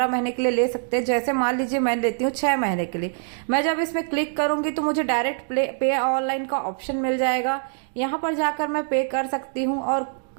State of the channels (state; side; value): silent; left; 63 dB below the other